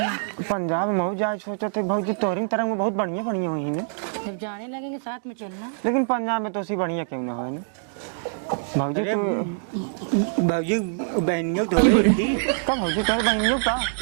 पंजाब में जाए सोचा थे भौजी तोहरी तरह में बहुत बढ़िया बढ़िया हुई है। जब जाने लगेंगे साथ में चलना। लेकिन पंजाब में तो उसी बढ़िया क्यों ना हो भौजी तू भौजी बहनियों तो कब भौजी तोहर बहनियों का?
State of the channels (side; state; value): left; silent; digital silence